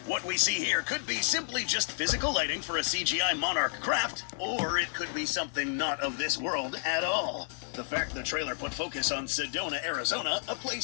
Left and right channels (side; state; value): right; silent; 57 dB below the other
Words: What we see here could be simply just physical lighting for a CGI monarch craft, or it could be something not of this world at all. The fact the trailer put focus on Sedona, Arizona, a